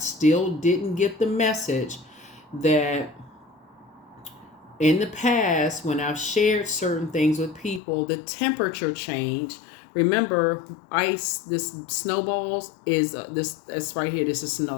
didn't get the message that in the past, when I've shared certain things with people, the temperature change. Remember, ice, this snowballs is it's right here. This is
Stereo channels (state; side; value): drops out; right; at 7.8 s